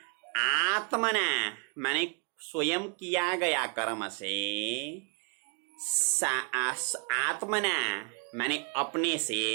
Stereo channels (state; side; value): quieter; left; 36.0 dB